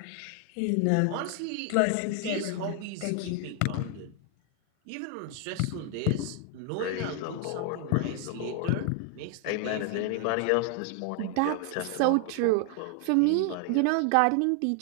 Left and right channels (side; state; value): both; different; correlation 0.00